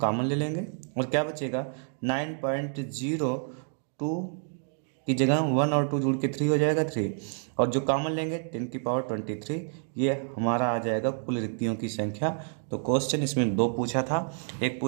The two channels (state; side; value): silent; left; 59 dB below the other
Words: ले लेंगे और क्या बचेगा? 9.02 की जगह 1 और 2 जुड़ के 3 हो जाएगा 3, और जो कॉमन लेंगे 10⁻23, ये हमारा आ जाएगा कुल रिक्तियों की संख्या। तो क्वेश्चन इसमें दो पूछा था। एक